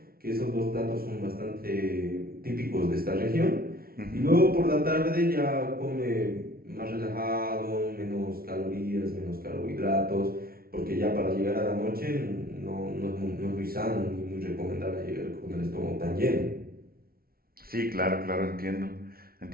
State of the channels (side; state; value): left; late; 0.44 ms